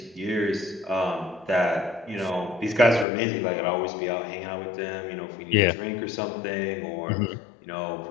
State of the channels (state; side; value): drops out; right; at 3.1 s